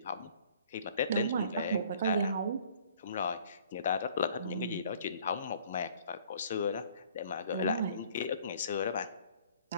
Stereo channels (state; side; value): inverted; both; correlation -0.55